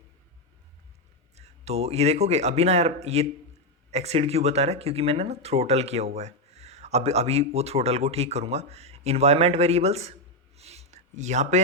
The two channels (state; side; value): normal; both; correlation 0.04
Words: तो ये देखोगे अभी ना यार ये एक्सीड क्यों बता रहा है, क्योंकि मैंने ना थ्रोटल किया हुआ है। अब अभी वो थ्रोटल को ठीक करूँगा। इन्वायरमेंट वेरिएबल्स, यहाँ पे